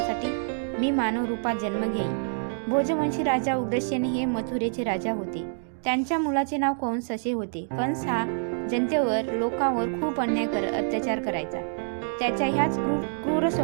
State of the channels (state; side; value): silent; left; digital silence